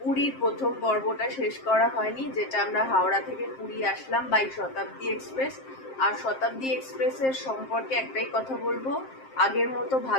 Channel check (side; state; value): right; late; 7.6 ms